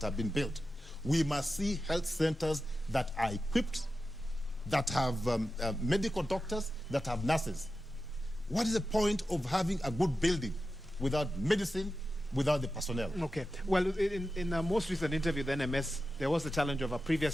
have been built. We must see health centers that are equipped, that have medical doctors, that have nurses. What is the point of having a good building without medicine, without the personnel. Okay. Well, in a most recent interview, the NMS, there was the challenge of a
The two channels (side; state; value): both; normal; correlation 0.92